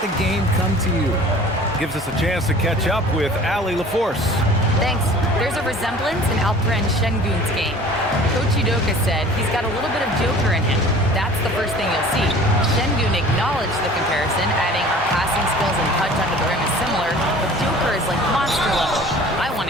the game come to you. Gives us a chance to catch up with Allie LaForce. Thanks. There's a resemblance in Alperon Şengün's game. Coach Udoka said he's got a little bit of Joker in him. That's the first thing you'll see. Şengün acknowledged the comparison, adding our passing skills and touch under the rim is similar, but Joker is like monster level. I want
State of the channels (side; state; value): both; normal; correlation 0.46